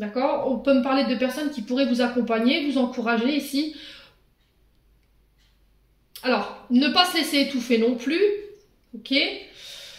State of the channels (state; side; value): identical; both; correlation 1.00